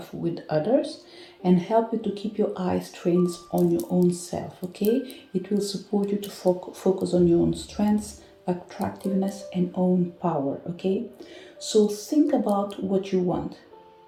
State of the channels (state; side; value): identical; both; correlation 1.00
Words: with others and help you to keep your eyes trained on your own self, okay? It will support you to focus on your own strengths, attractiveness, and own power, okay? So think about what you want.